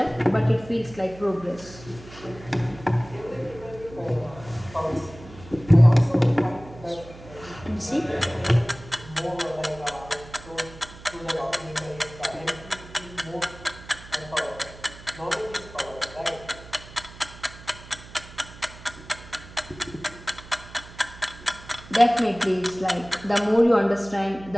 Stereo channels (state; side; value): noise; right; hum, 18 dB below the sound